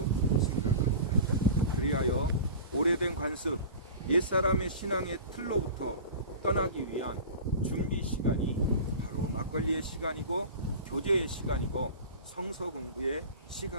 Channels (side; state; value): both; inverted; correlation -0.35